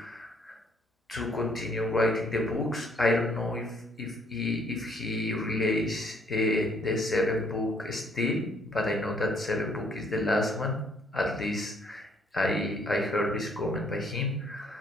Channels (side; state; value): both; normal; correlation 0.66